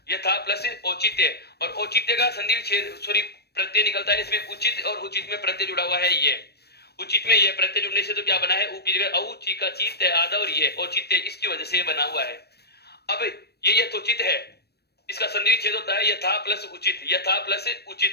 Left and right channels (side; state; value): right; late; 0.47 ms